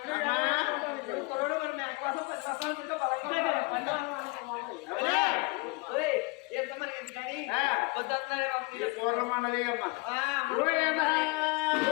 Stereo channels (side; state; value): right; quieter; 26.6 dB